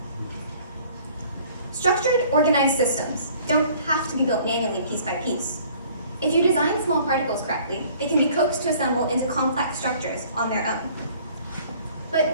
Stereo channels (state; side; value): inverted; both; correlation -0.54